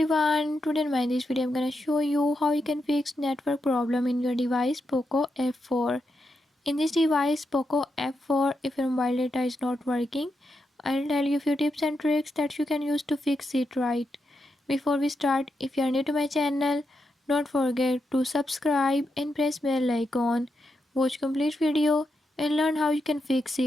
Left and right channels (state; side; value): normal; both; correlation 0.85